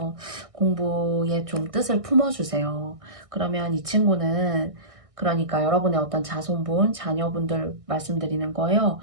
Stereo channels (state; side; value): late; left; 1.6 ms